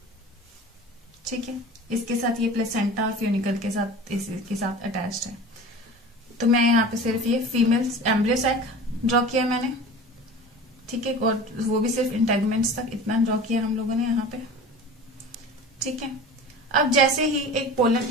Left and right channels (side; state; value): both; normal; correlation 0.37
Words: ठीक है, इसके साथ ये प्लेसेंटा और फ्यूनिकल के साथ इसके साथ अटैच्ड है। तो मैं यहाँ पे सिर्फ ये फीमेल एम्ब्रियो सैक ड्रॉ किया मैंने। ठीक है, और वो भी सिर्फ इंटेगुमेंट्स तक इतना ड्रॉ किया हम लोगों ने यहाँ पे। ठीक है, अब जैसे ही एक